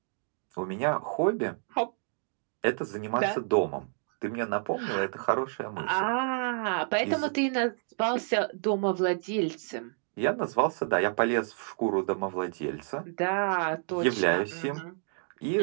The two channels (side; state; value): left; silent; 58 dB below the other